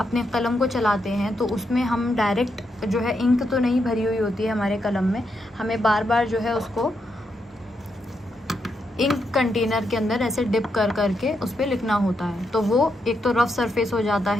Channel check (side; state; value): both; normal; correlation 0.82